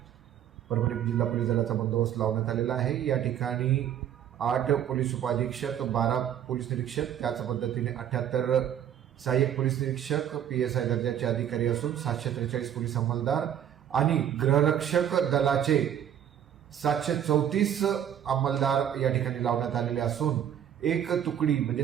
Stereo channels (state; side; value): quieter; left; 10.0 dB